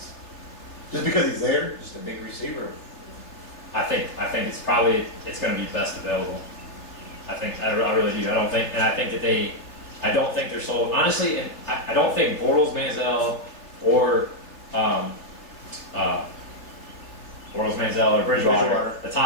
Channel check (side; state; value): right; late; 3.3 ms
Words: Just because he's there? Just a big receiver. I think it's going to be best available. I really do. I don't think they're sold. Honestly, and I don't think Bortles, Manziel, or Bridgewater, the